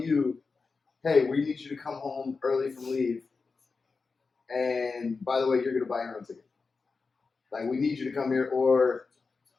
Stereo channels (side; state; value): right; quieter; 4.5 dB